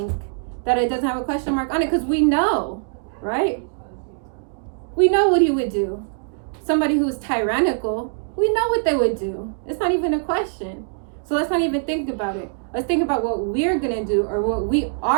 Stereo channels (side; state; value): left; silent; digital silence